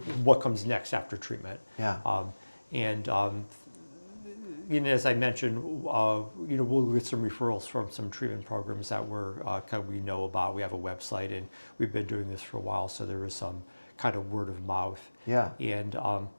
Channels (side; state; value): both; inverted; correlation -1.00